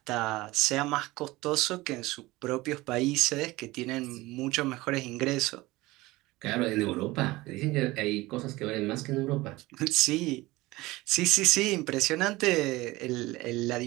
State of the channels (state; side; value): quieter; left; 19.9 dB